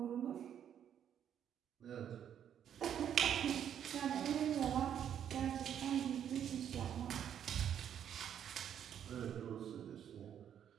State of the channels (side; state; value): left; quieter; 9.4 dB